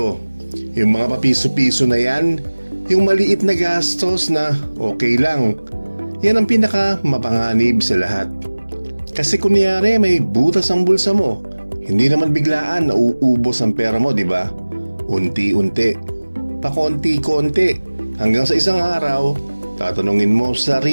yung mga papiso-piso na yan, yung maliit na gastos na okay lang. Yan ang pinaka mapanganib sa lahat. Kasi kunyari may butas ang bulsa mo, hindi naman biglaan na uubos ang pera mo, di ba? Unti-unti, pakonti-konti, hanggang sa isang araw, tatanungin mo sa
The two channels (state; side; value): inverted; both; correlation -1.00